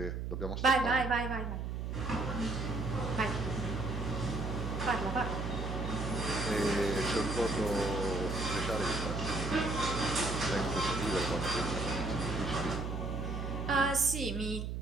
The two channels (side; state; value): right; noise; hum, 3 dB below the sound